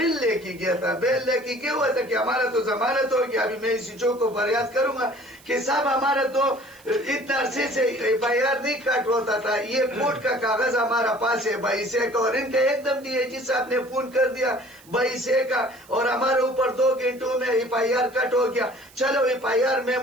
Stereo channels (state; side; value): noise; right; hiss, 25 dB below the sound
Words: لے کے گیا تھا. بیل لے کے گیا ہوا تھا کہ ہمارا تو ضمانت ہو گیا. ابھی میں اسی چوک کو فریاد کروں گا کہ صاحب ہمارا تو اتنا عرصے سے FIR نہیں کاٹ ہوتا تھا. یہ کورٹ کا کاغذ ہمارا پاس ہے 22 کا, اور ان کا ایک دم DIG صاحب نے فون کر دیا 22 کا, اور ہمارے اوپر 2 گھنٹوں میں FIR کٹ ہو گیا. چلو FIR میں